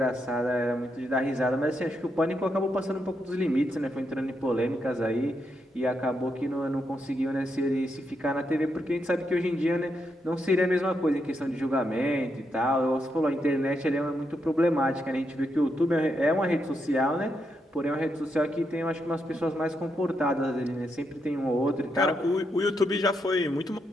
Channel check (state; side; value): normal; both; correlation 0.81